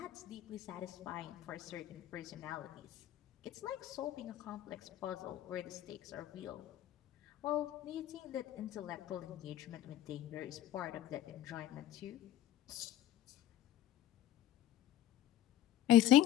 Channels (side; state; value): right; quieter; 12.4 dB